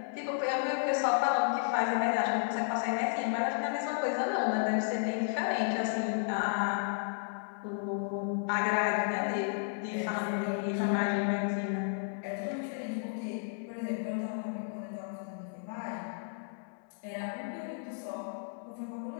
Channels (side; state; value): right; silent; 56 dB below the other